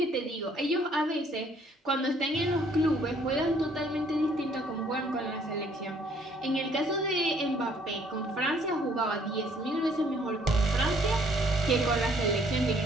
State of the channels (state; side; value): normal; both; correlation 0.62